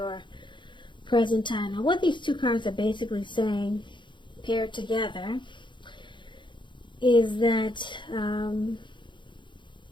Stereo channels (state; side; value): late; right; 0.23 ms